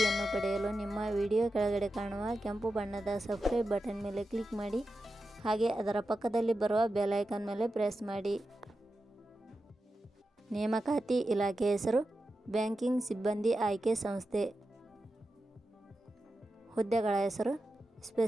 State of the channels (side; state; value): both; normal; correlation 0.91